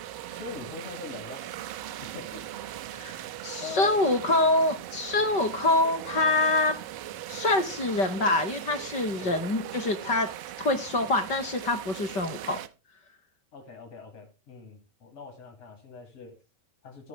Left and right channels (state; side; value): late; right; 4.9 ms